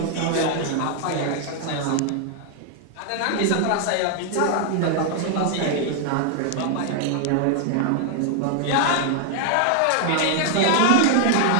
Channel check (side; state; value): both; different; correlation 0.00